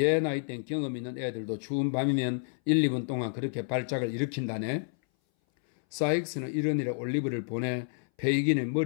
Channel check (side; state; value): right; silent; 58 dB below the other